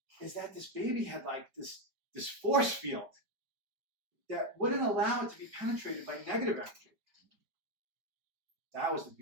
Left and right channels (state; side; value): late; left; 5.0 ms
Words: is that this baby had like this force field that wouldn't allow it to be penetrated by negative energy. That was the